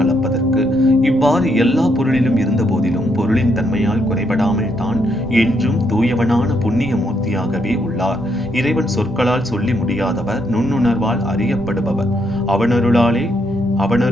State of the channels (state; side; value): normal; both; correlation 0.76